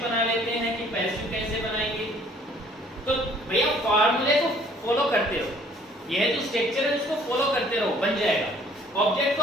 बना लेते हैं कि पैसिव कैसे बनाएंगे। तो भैया फार्मूले को फॉलो करते रहो, यह जो स्ट्रक्चर है उसको फॉलो करते रहो, बन जाएगा। ऑब्जेक्ट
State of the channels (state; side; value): normal; both; correlation 0.57